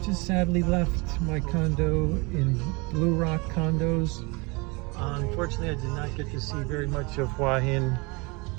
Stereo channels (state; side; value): quieter; left; 27.7 dB